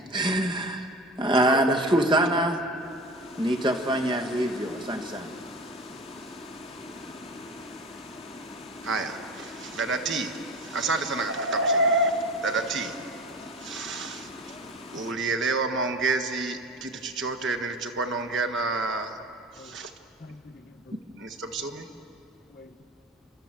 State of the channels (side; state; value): both; normal; correlation 0.33